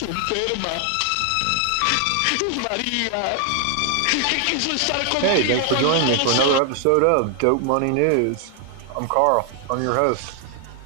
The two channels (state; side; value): different; both; correlation 0.00